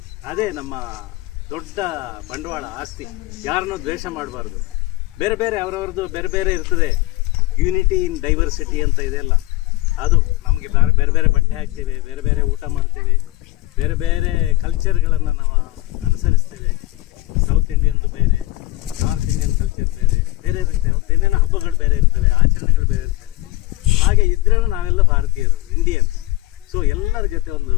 ಅದೇ ನಮ್ಮ ದೊಡ್ಡ ಬಂಡವಾಳ, ಆಸ್ತಿ. ಯಾರನ್ನೂ ದ್ವೇಷ ಮಾಡಬಾರ್ದು. ಬೇರೆ ಬೇರೆ ಅವರವ್ರದ್ದು ಬೇರೆ ಬೇರೆ ಇರ್ತದೆ. ಯೂನಿಟಿ ಇನ್ ಡೈವರ್ಸಿಟಿ ಅಂತ ಇದೆಲ್ಲ, ಅದು ನಮಗೆ ಬೇರೆ ಬೇರೆ ಬಟ್ಟೆ ಹಾಕ್ತೇವೆ, ಬೇರೆ ಬೇರೆ ಊಟ ಮಾಡ್ತೇವೆ, ಬೇರೆ ಬೇರೆ ಕಲ್ಚರ್ಗಳನ್ನು ನಾವು ಅನುಸರಿಸ್ತೇವೆ. ಸೌತ್ ಇಂಡಿಯನ್ದು ಬೇರೆ, ನಾರ್ತ್ ಇಂಡಿಯನ್ ಕಲ್ಚರ್ ಬೇರೆ ಬೇರೆ ಇರುತ್ತೆ. ಏನೇನೋ ಹಬ್ಬಗಳು ಬೇರೆ ಇರ್ತವೆ, ಆಚರಣೆಗಳು ಬೇರೆ ಇರ್ತವೆ. ಹಾಗೆ ಇದ್ರೂ ನಾವೆಲ್ಲ ಭಾರತೀಯರು, ಇಂಡಿಯನ್ಸ್. ಸೊ ಎಲ್ಲರ ಜೊತೆ ಒಂದು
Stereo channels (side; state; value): right; quieter; 18.6 dB